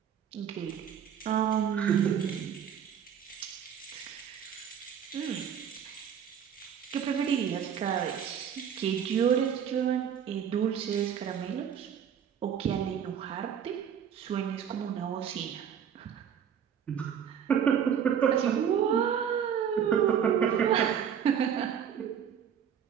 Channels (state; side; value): quieter; left; 8.4 dB